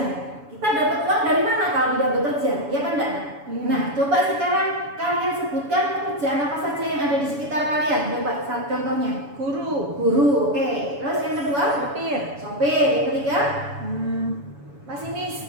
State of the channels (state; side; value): late; left; 7.1 ms